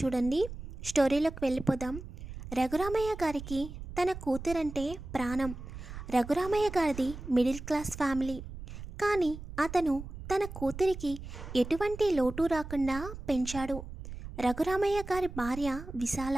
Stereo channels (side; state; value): right; noise; rumble, 11 dB below the sound